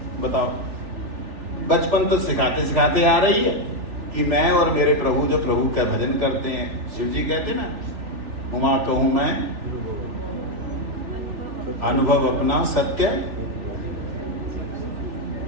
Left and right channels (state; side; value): late; left; 3.4 ms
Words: बताओ, बचपन तो सिखाते सिखाते आ रही है कि मैं और मेरे प्रभु जो प्रभु का भजन करते हैं, शिव जी कहते ना, उमा कहूँ मैं अनुभव अपना सत्य,